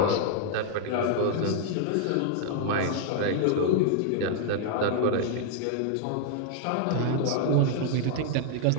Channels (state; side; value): different; both; correlation -0.01